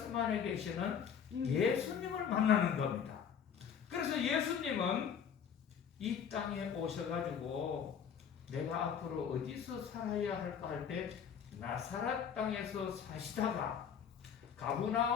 안에 계시는 예수님을 만나는 겁니다. 그래서 예수님은 이 땅에 오셔가지고 내가 앞으로 어디서 살아야 할까 할 때 나사렛 땅에서 사시다가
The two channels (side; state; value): right; quieter; 7.6 dB